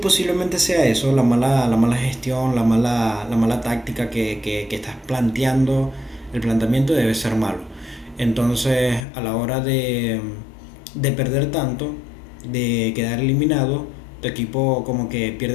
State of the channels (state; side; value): drops out; right; at 9.1 s